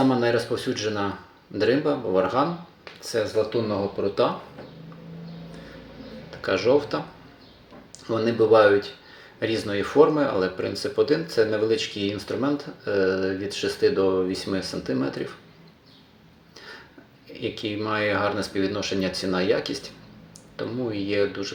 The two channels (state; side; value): identical; both; correlation 1.00